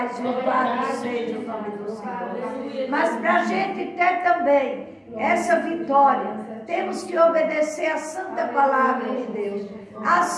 louvado seja o nome do Senhor. Mas para a gente ter também essa vitória, temos que obedecer a santa palavra de Deus.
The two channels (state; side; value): identical; both; correlation 1.00